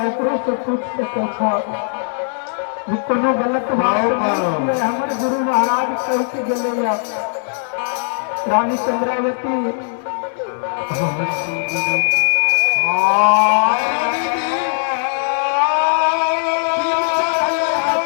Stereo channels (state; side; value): silent; right; digital silence